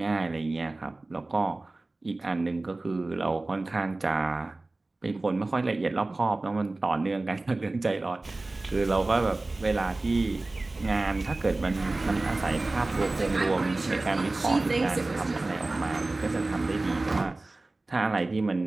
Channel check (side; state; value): left; quieter; 3.0 dB